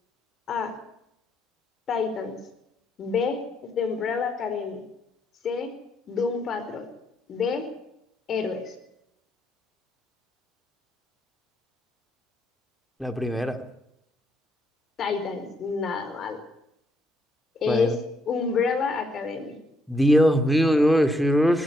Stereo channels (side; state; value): both; normal; correlation 0.75